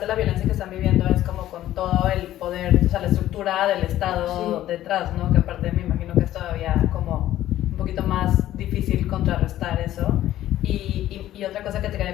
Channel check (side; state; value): right; quieter; 13.5 dB